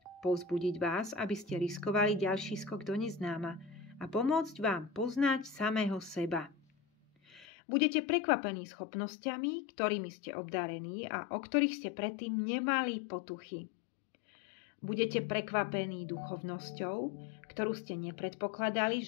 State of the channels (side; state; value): right; drops out; at 7.5 s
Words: povzbudiť vás, aby ste riskovali ďalší skok do neznáma a pomôcť vám poznať samého seba. Budete prekvapení schopnosťami, ktorými ste obdarení a o ktorých ste predtým nemali potuchy. Budete prekvapení duchovnosťou, ktorú ste nepredpokladali,